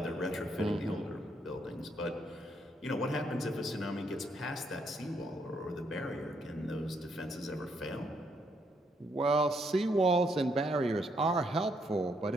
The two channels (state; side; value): normal; both; correlation 0.74